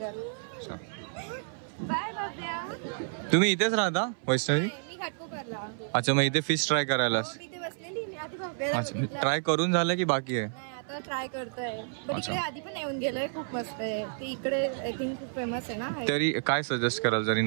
बाय बाब्या. तुम्ही इथेच राहता वैष्णवी? मी घाटकोपरला. अच्छा, मग इथे फिश ट्राय करायला? मी इथे बसलेली. मी आधी बाब्याला अच्छा, बघितलं. ट्राय करून झालं की बाकी आहे? नाही, आता ट्राय करतोय. पण अच्छा. इकडे आधी पण येऊन गेलोय. खूप मस्त आहे ते इकडे. आय थिंक खूप फेमस आहे ना. तरी काय सजेस्ट कराल जरी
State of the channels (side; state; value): left; silent; 58 dB below the other